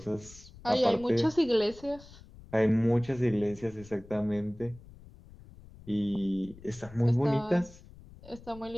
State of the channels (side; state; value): left; noise; rumble, 20 dB below the sound